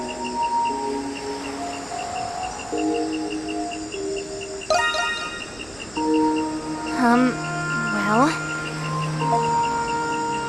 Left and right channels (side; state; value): right; noise; hum, 23 dB below the sound